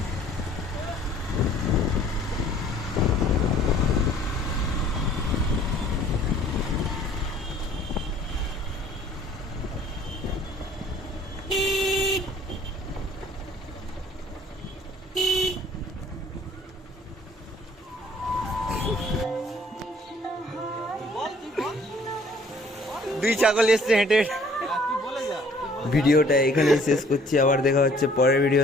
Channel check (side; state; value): both; normal; correlation 0.57